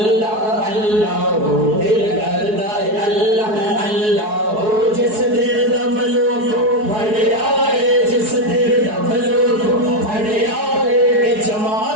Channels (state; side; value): late; left; 4.7 ms